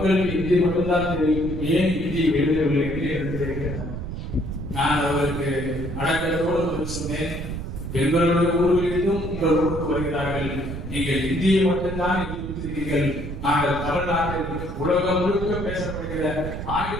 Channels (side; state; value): right; noise; rumble, 7 dB below the sound